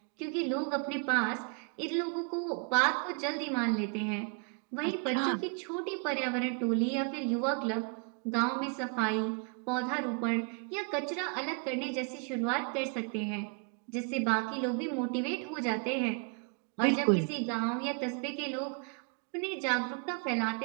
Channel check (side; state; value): left; quieter; 38.7 dB